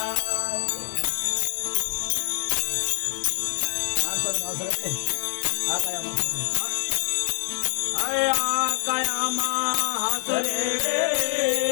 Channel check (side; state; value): right; silent; digital silence